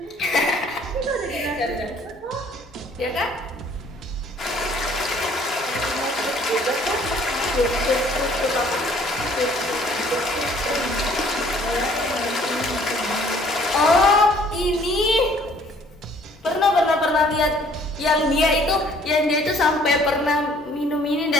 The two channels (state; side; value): normal; both; correlation 0.58